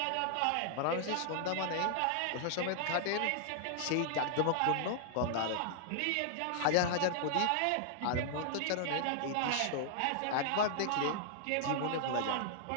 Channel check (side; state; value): both; different; correlation -0.01